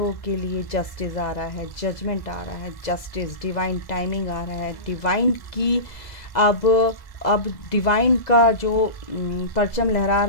के लिए जस्टिस आ रहा है, जजमेंट आ रहा है, जस्टिस, डिवाइन टाइमिंग आ रहा है, डिवाइन की अब डिवाइन का जो परचम लहरा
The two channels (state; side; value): late; right; 2.0 ms